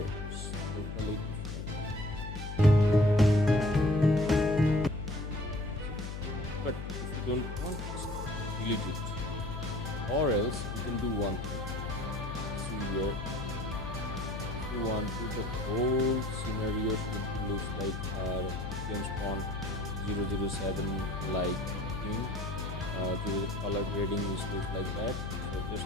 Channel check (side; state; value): left; noise; hum, 6 dB below the sound